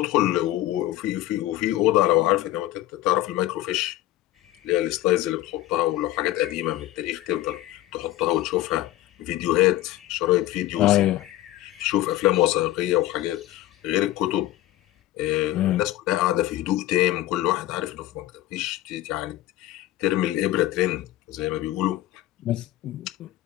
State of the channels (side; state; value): right; quieter; 15.0 dB